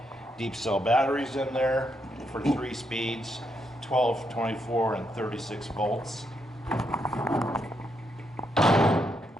deep cell batteries in there for 3 speeds. 12, 24, and 36 volts.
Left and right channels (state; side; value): normal; both; correlation 0.79